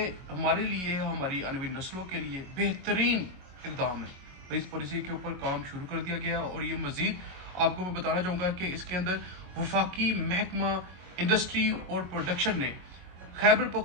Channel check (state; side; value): late; left; 22 ms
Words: हमारे लिए, हमारी आने वाली नस्लों के लिए बेहतरीन इक़दाम है। और इस पॉलिसी के ऊपर काम शुरू कर दिया गया और ये मज़ीद आपको मैं बताना चाहूँगा कि इसके अंदर वफाकी महकमा इंडस्ट्री और प्रोडक्शन ने खैबर